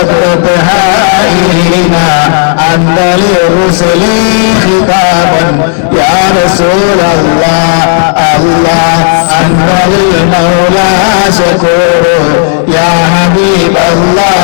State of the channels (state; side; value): silent; right; 72 dB below the other